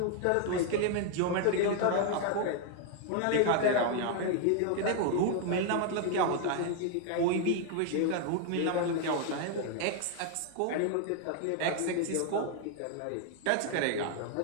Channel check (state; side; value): different; both; correlation 0.00